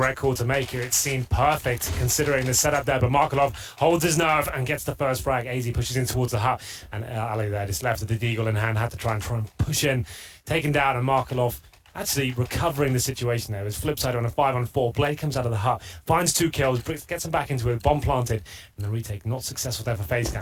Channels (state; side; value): identical; both; correlation 1.00